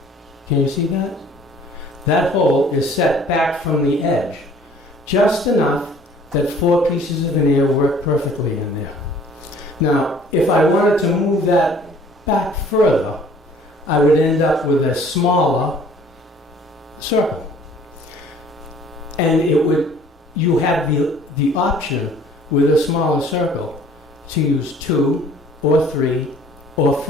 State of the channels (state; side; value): normal; both; correlation 0.54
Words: Can you see that? That hole is set back from the edge, just enough that 4 pieces of veneer work perfectly in there. Now, if I wanted to move that back further, I would end up with a smaller circle. And you have the option with a smaller circle to use 2 or 3 or